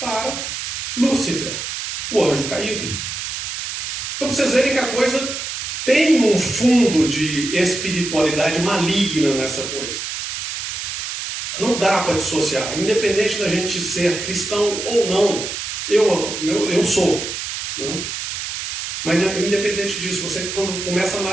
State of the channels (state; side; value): noise; right; hiss, 5 dB below the sound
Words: Lúcifer, o anjo caído. Então vocês verem que a coisa tem um fundo de espiritualidade maligna nessa coisa. Não dá para dissociar, independente da gente ser cristão ou não. Eu sou. Não? Mas independente disso, você quando começa a